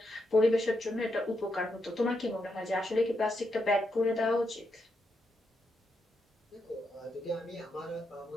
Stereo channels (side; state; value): both; normal; correlation 0.82